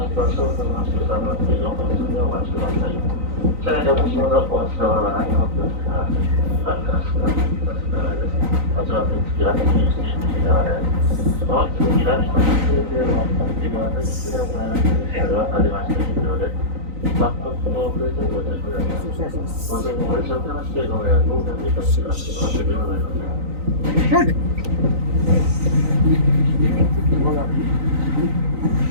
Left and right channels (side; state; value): left; late; 3.9 ms